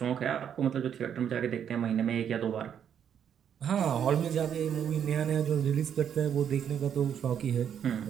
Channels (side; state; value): left; quieter; 8.7 dB